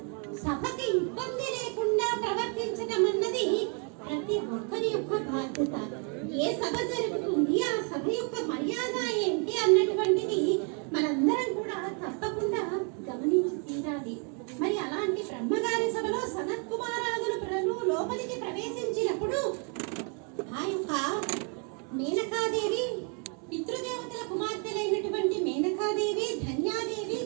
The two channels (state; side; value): quieter; left; 38.7 dB